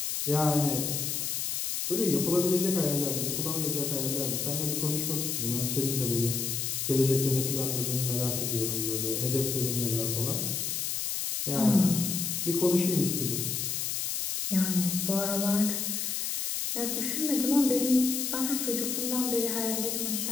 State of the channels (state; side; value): noise; left; hiss, 1 dB below the sound